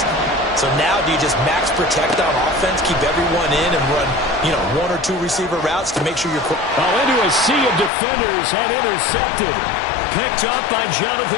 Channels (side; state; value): right; drops out; at 7.9 s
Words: So now do you just max protect on offense, keep everyone in, and run, 1 or 2 receiver routes to make sure you're... Into a sea of defenders and intercepted. Picked up by